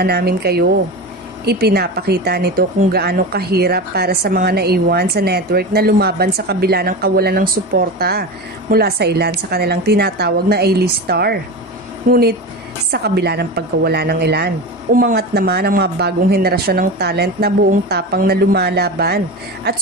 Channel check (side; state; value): both; normal; correlation 0.25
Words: namin kayo. Ipinapakita nito kung gaano kahirap para sa mga naiwan sa network na lumaban sa kabila ng kawalan ng suporta mula sa ilan sa kanilang tinatawag na A-list star. Ngunit sa kabila ng pagkawala ng ilan, umangat naman ang mga bagong henerasyon ng talent na buong tapang na lumalaban at